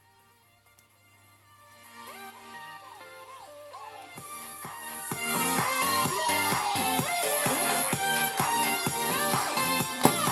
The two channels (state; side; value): identical; both; correlation 1.00